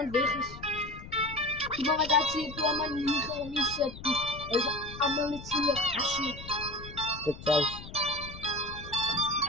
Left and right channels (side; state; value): left; noise; rumble, 14 dB below the sound